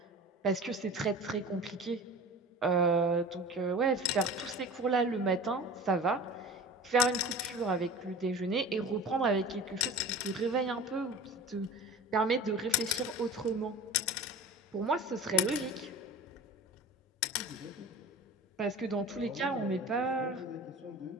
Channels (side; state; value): both; normal; correlation 0.37